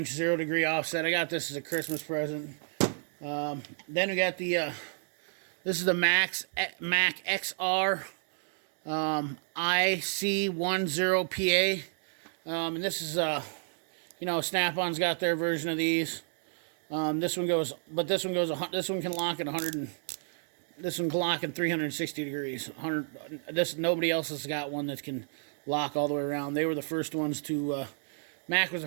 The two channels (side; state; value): left; silent; digital silence